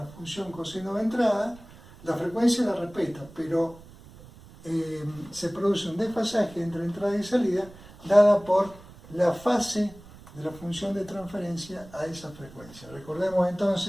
función coseno de entrada. La frecuencia la respeta, pero se produce un desfasaje entre entrada y salida dada por la fase de la función de transferencia a esa frecuencia. Recordemos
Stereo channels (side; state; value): right; noise; rumble, 20 dB below the sound